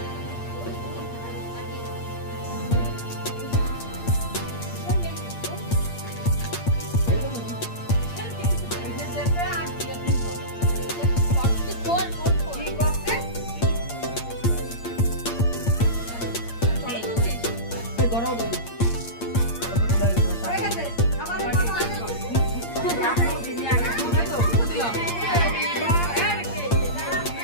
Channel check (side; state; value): right; late; 8.7 ms